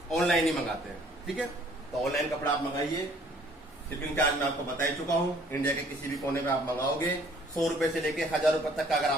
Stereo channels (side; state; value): both; normal; correlation 0.58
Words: ऑनलाइन ही मंगाते हैं, ठीक है। तो ऑनलाइन कपड़ा आप मंगाइए, शिपिंग चार्ज मैं आपको बता ही चुका हूँ। इंडिया के किसी भी कोने में आप मंगाओगे 100 रुपए से लेके 1000 रुपए तक का अगर